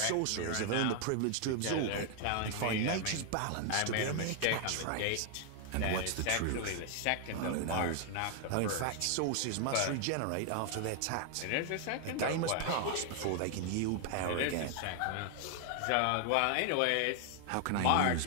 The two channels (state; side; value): different; both; correlation 0.00